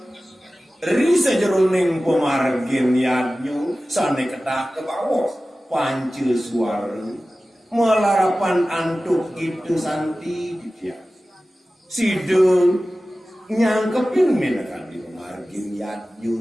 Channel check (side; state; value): both; normal; correlation 0.96